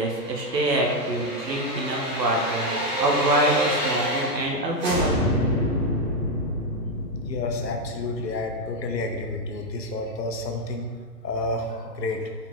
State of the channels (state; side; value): normal; both; correlation 0.04